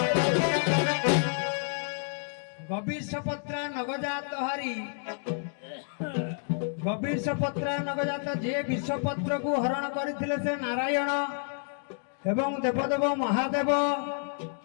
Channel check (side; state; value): right; silent; 58 dB below the other